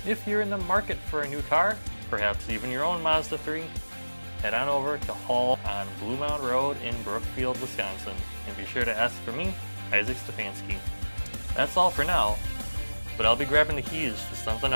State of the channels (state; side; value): inverted; both; correlation -1.00